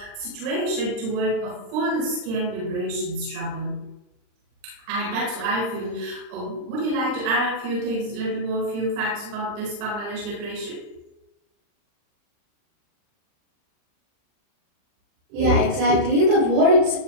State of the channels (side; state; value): left; late; 39 ms